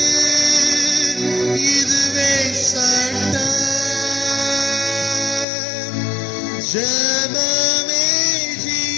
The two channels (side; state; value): right; drops out; at 5.5 s